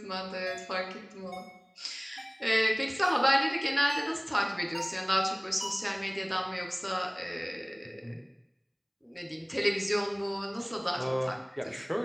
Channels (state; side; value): identical; both; correlation 1.00